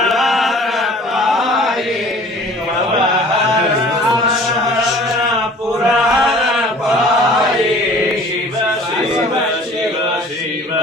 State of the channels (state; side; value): normal; both; correlation 0.48